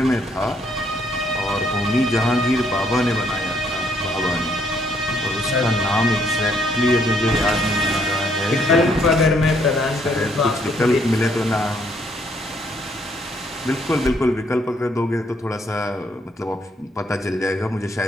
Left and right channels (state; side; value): normal; both; correlation 0.69